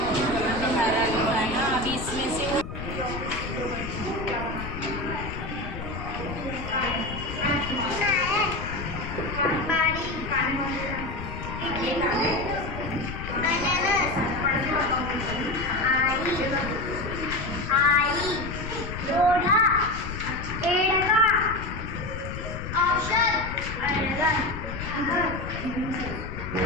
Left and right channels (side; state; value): left; noise; rumble, 8 dB below the sound